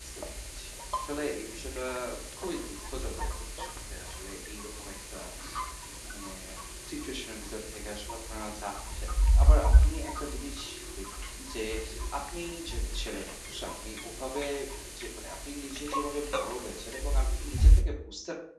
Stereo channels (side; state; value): both; identical; correlation 1.00